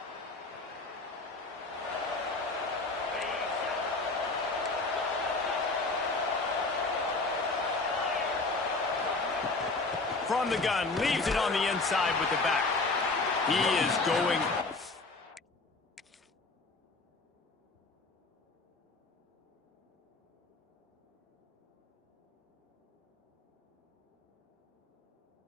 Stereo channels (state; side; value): quieter; right; 3.5 dB